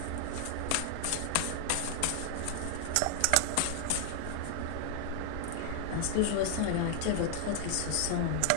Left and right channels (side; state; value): both; different; correlation 0.00